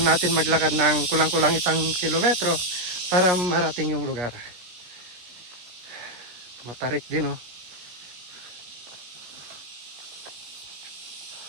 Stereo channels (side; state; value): left; late; 17 ms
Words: natin maglakad ng kulang-kulang 1 kilometro para marating yung lugar. Matarik din, oh.